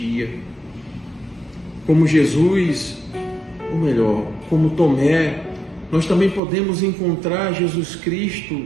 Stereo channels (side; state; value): left; drops out; at 6.4 s